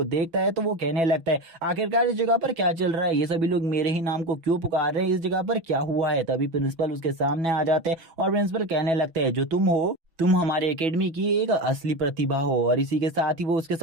देखता है तो वो कहने लगता है, आखिरकार इस जगह पर क्या चल रहा है, ये सभी लोग मेरे ही नाम को क्यों पुकार रहे हैं, इस जगह पर क्या हुआ है। तभी प्रिंसिपल उसके सामने आ जाते हैं और प्रिंसिपल कहने लगते हैं, जो तुम हो, तुम हमारे एकेडमी की एक असली प्रतिभा हो। और इसी के साथ ही वो उसके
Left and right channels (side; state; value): left; late; 6.1 ms